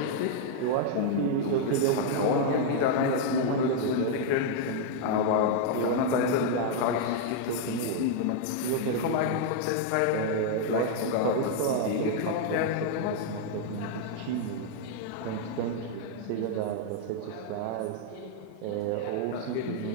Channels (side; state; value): both; different; correlation -0.01